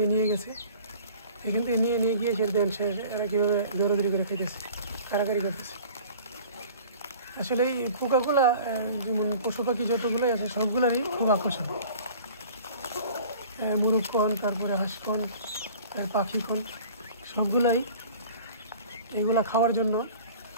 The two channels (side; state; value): both; inverted; correlation -0.46